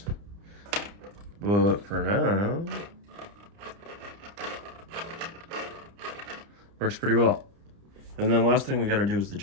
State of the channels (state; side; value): late; left; 30 ms